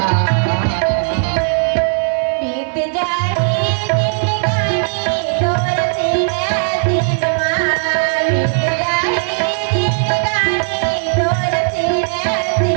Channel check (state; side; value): silent; left; digital silence